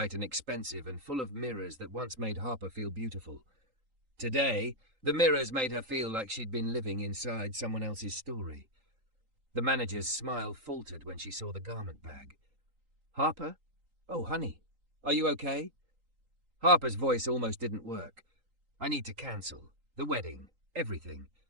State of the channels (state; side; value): late; left; 3.8 ms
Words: and expensive and full of mirrors that once made Harper feel beautiful. Today, the mirrors made her feel like she'd been living inside someone else's story. The manager's smile faltered when she saw the garment bag. "Harper? Oh, honey, are you okay?" Harper's voice almost didn't work. "I need to cancel. The wedding. Everything."